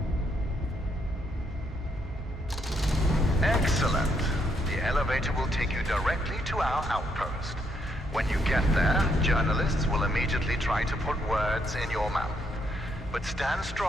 Excellent. The elevator will take you directly to our outpost. When you get there, journalists will immediately try to put words in your mouth. But stand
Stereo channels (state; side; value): normal; both; correlation 0.74